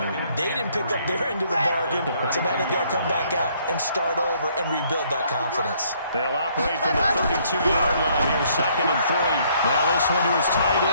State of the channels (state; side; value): inverted; both; correlation -0.65